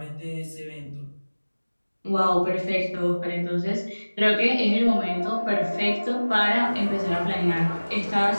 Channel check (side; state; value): both; inverted; correlation -1.00